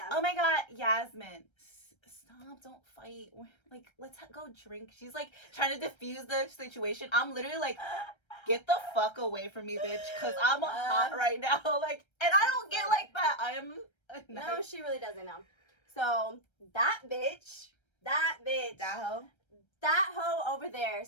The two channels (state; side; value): late; right; 1.3 ms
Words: "Oh my god, Yazmine, stop, don't fight. Like, let's go drink." She's like trying to diffuse the situation. I'm literally like, "Get the fuck away from me, bitch," because I'm hot right now. Like, and I don't get like that. I am no, she really doesn't know. So that bitch. That hoe over there.